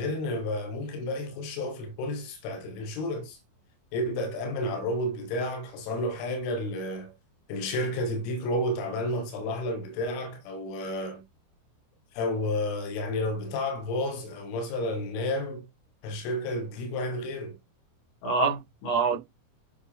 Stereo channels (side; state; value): right; late; 25 ms